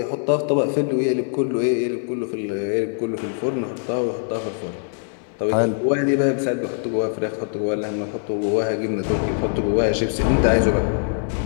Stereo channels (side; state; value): right; silent; 64 dB below the other